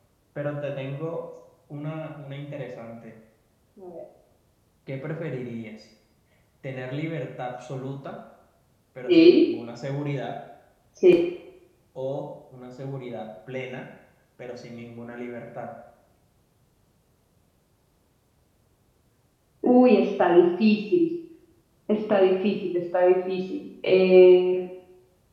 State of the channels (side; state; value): both; identical; correlation 1.00